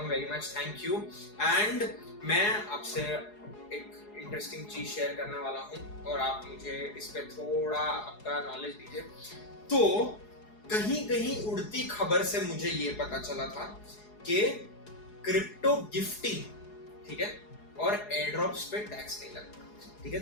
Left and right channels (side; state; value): right; late; 4.8 ms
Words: very much thank you. And मैं आपसे एक इंटरेस्टिंग चीज शेयर करने वाला हूँ और आप मुझे इस पे थोड़ा आपका नॉलेज दीजिए। तो कहीं कहीं उड़ती खबर से मुझे ये पता चला था कि क्रिप्टो गिफ्टिंग, ठीक है, और एयर ड्रॉप्स पे टैक्स नहीं लगता। ठीक है,